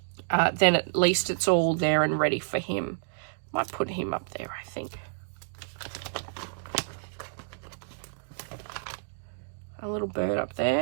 then at least it's all there and ready for him. Might put him up there, I think. A little bird up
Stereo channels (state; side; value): silent; left; digital silence